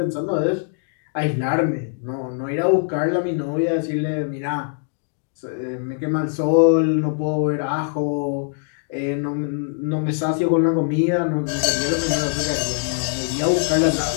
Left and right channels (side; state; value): right; silent; 61 dB below the other